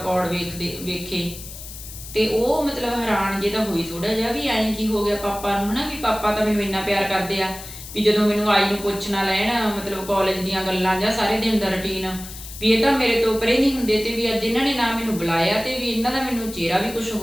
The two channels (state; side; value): noise; left; hiss, 13 dB below the sound